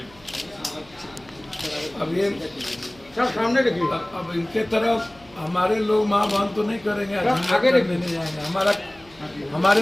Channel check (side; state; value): right; noise; hum, 26 dB below the sound